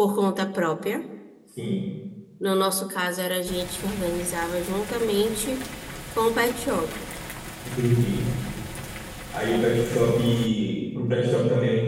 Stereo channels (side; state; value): both; identical; correlation 1.00